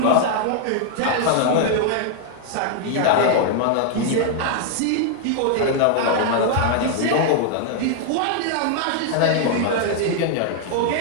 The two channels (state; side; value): different; both; correlation 0.00